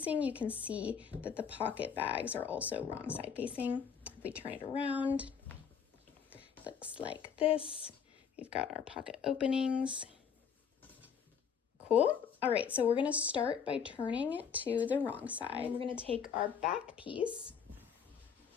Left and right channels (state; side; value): quieter; right; 7.1 dB